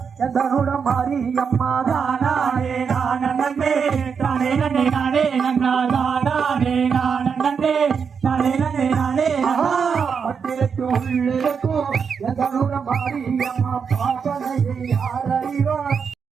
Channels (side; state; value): left; quieter; 6.3 dB